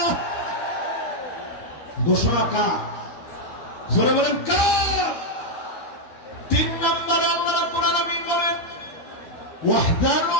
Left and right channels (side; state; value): right; late; 12 ms